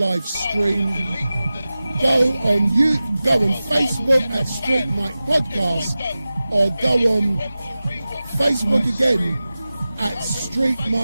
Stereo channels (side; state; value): both; inverted; correlation -0.96